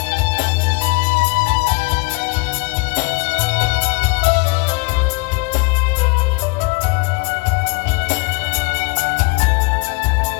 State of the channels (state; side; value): quieter; right; 30.2 dB